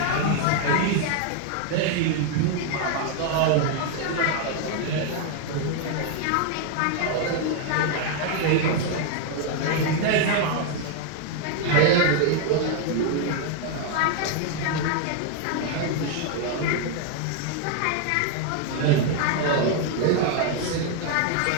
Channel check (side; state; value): both; different; correlation 0.00